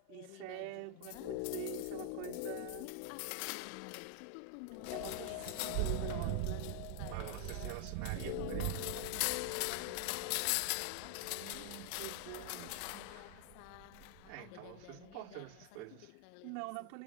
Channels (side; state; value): both; different; correlation 0.00